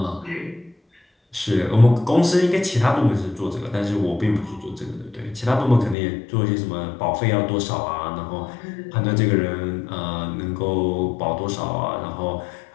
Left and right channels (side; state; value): right; drops out; at 6.0 s